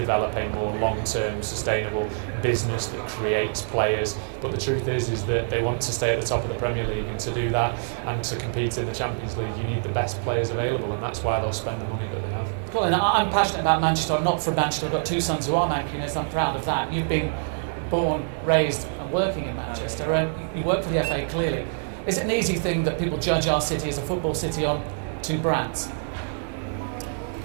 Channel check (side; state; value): left; silent; digital silence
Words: a more long-term, sustainable business that creates players. But the truth is that they want to stay at the top of the Premier League, and to do that and to compete in the Champions League, you need the best players available, and that's why they'll spend the money that they have. Colin, I'm passionate about Manchester. I'm not from Manchester. I've got two sons who are Mancunians. I'm proud of that. You've been born, raised and working in Manchester, and you work for the FA clearly. Is it an easy thing that people judge our city as a football city on two brands?